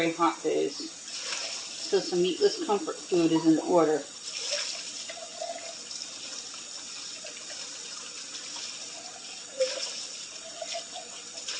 hot days. So some meatless comfort food is in order.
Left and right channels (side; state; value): both; identical; correlation 1.00